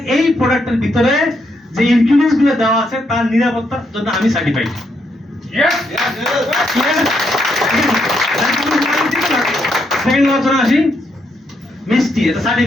এই প্রোডাক্টের ভিতরে যে ইনগ্রেডিয়েন্টস গুলো দেওয়া আছে তার নিরাপত্তার জন্য আমি সার্টিফাইড। সেকেন্ড আলোচনা আসি, মিষ্টি এটা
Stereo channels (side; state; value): both; normal; correlation 0.77